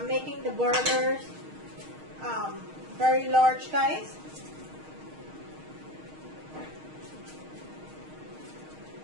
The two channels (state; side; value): late; left; 6.4 ms